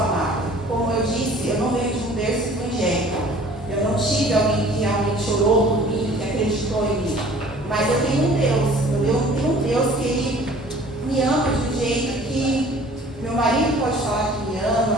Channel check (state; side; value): normal; both; correlation 0.50